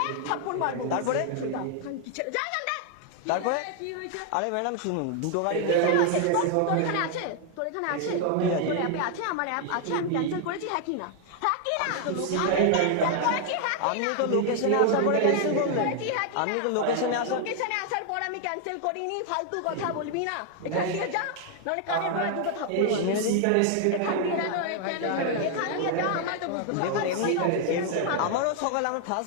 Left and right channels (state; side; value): different; both; correlation 0.00